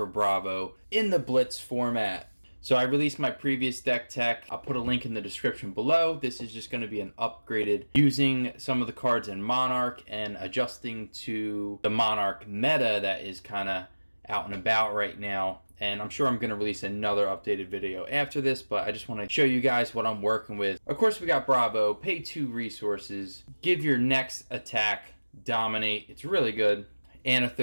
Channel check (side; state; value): both; inverted; correlation -1.00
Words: Bravo in the Blitz format. So I released my previous deck tech. I'll put a link in the description below. This is just going to be an upgraded using some of the cards in Monarch and adjusting to the Monarch meta that is kind of out and about right now. And I'm sure I'm going to release another updated video after this, but I just want to show you guys what I'm working with. Of course, we got Bravo, pay 2 resources, give your next attack, dominate. It's really good.